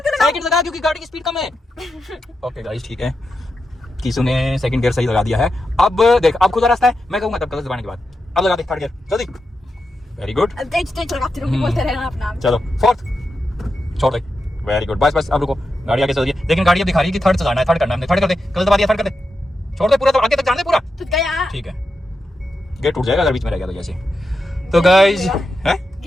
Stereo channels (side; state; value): both; normal; correlation 0.88